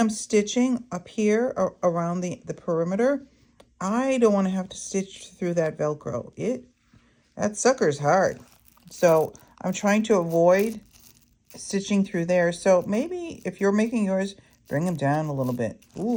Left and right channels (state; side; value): identical; both; correlation 1.00